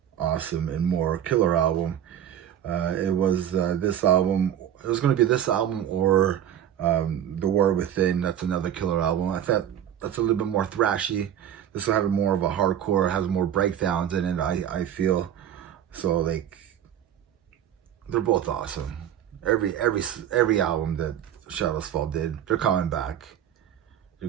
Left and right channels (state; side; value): quieter; left; 10.2 dB